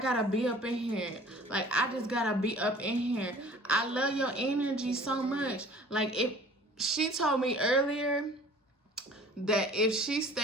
gotta be up in here. Like, I just gotta be up in here. I love your energy so much. Like, if she told me earlier that if she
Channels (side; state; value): both; normal; correlation 0.48